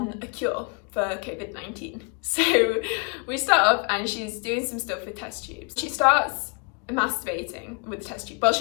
a cure for COVID-19. So we start off and she's doing some stuff with test tubes. She starts masturbating with the test tube. Well,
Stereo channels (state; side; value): quieter; right; 36.2 dB